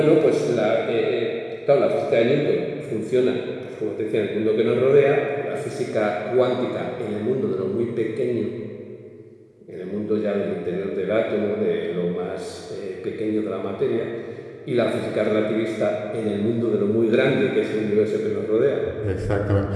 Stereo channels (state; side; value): identical; both; correlation 1.00